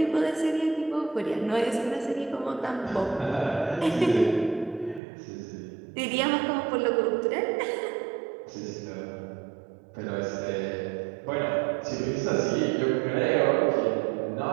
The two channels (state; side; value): drops out; left; at 5.0 s